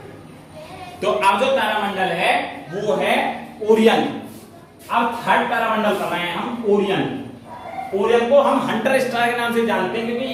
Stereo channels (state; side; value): identical; both; correlation 1.00